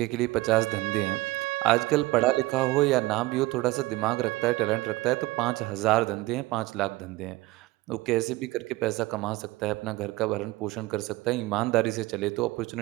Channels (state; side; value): quieter; left; 19.9 dB